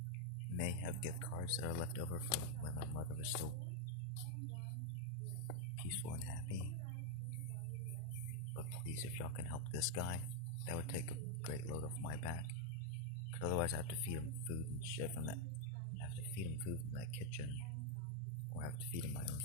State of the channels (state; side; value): different; both; correlation 0.01